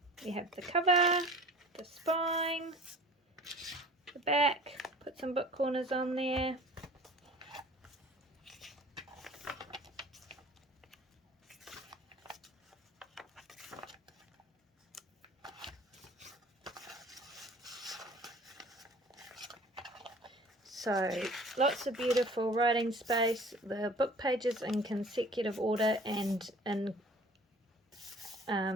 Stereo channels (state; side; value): normal; both; correlation 0.46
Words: We have the cover, the spine, the back, put some book corners on there. So lots of beautiful writing space, the book pages in consecutive order and in